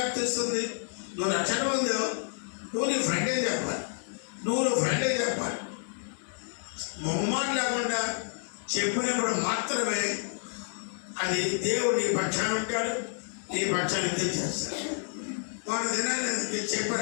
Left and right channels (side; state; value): right; silent; 58 dB below the other